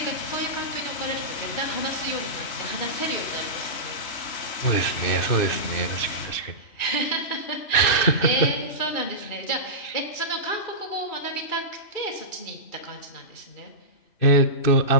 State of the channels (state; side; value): late; right; 2.6 ms